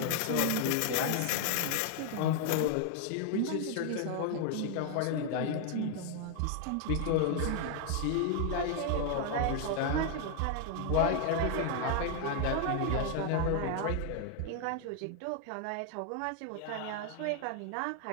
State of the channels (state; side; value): different; both; correlation 0.00